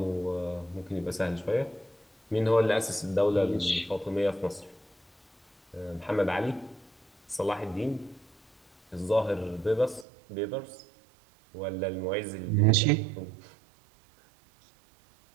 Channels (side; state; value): left; drops out; at 10.1 s